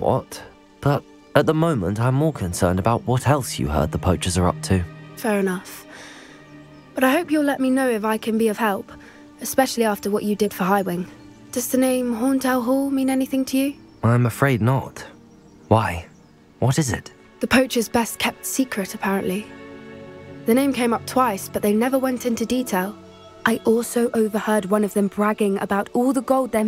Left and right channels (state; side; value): identical; both; correlation 1.00